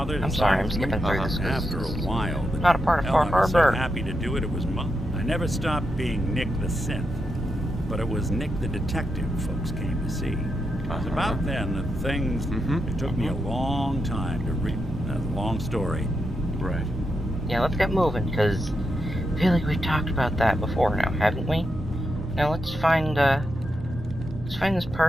I'm sorry, I'm decides skipping to through move this 'cause After a while, the not a part of hell, Far I was so Harbor. happy to do it. It was mine. I never stopped being Nick the synth, but it was Nick the detective folks came to see. It was about then that things. It took me a long time to read. That's a long story. Right. Yeah, let's get moving, because I feel like we've talked about that before now, haven't we? Now let's find this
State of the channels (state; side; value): normal; both; correlation 0.85